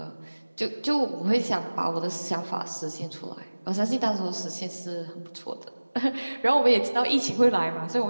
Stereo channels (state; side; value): inverted; both; correlation -1.00